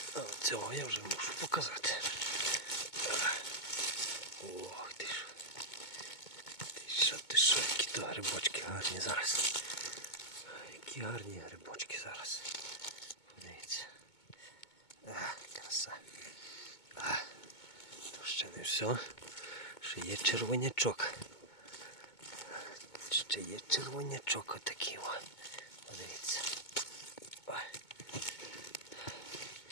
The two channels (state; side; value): late; right; 2.2 ms